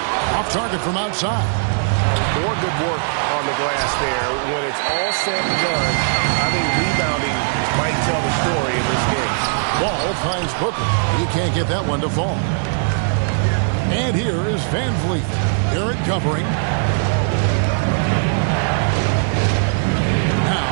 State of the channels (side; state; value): left; silent; digital silence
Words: off target from outside. More good work on the glass there. When it's all said and done, I think rebounding might tell the story in this game. Ball finds Booker. He can't get that one to fall. And here is Van Vliet. Barrett covering.